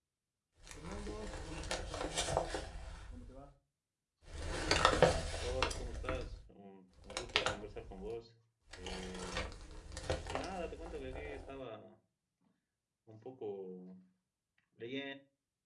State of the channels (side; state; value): both; identical; correlation 1.00